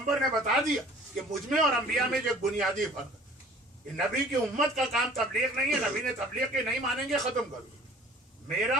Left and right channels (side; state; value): both; normal; correlation 0.50